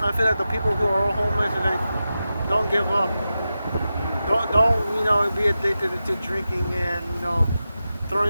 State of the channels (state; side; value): inverted; both; correlation -0.92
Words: I feel like the people who are homeless and like don't give up. Don't be addicted to drinking and